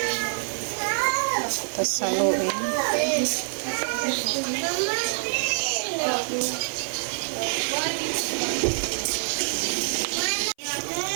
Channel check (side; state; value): left; silent; 56 dB below the other